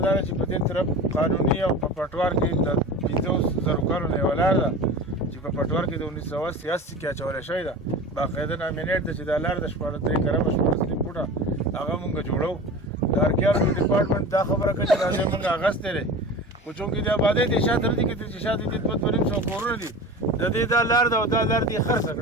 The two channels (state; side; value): normal; both; correlation 0.33